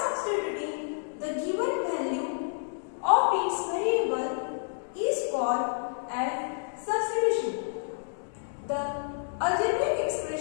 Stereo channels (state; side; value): silent; right; digital silence